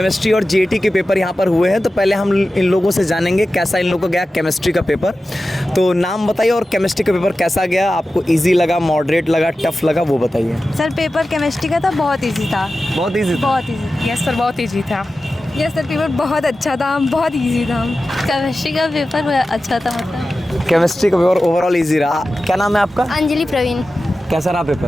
और जीएटी के पेपर यहाँ पर हुए हैं। तो पहले हम इन लोगों से जानेंगे कैसा इन लोगों को गया केमिस्ट्री का पेपर। तो नाम बताइए और केमिस्ट्री का पेपर कैसा गया, आपको इजी लगा, मॉडरेट लगा, टफ लगा, वो बताइए। सर पेपर केमिस्ट्री का था, बहुत इजी था। बहुत इजी था? बहुत इजी। यस सर, बहुत इजी था। यस सर, पेपर बहुत अच्छा था, बहुत इजी था। केमिस्ट्री का पेपर अच्छा था, मतलब केमिस्ट्री का पेपर ओवरऑल इजी रहा। क्या नाम है आपका? अंजलि प्रवीण। कैसा रहा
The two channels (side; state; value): both; normal; correlation 0.94